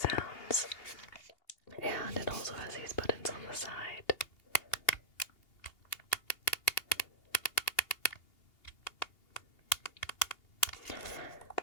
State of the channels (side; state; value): right; late; 2.8 ms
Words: And it also has these buttons on the side.